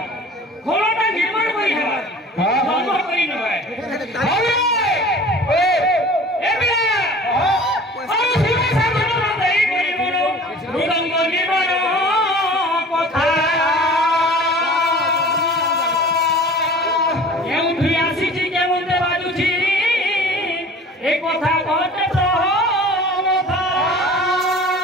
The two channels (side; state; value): both; normal; correlation 0.44